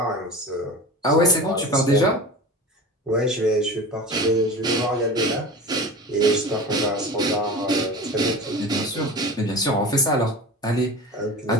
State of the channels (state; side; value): normal; both; correlation 0.33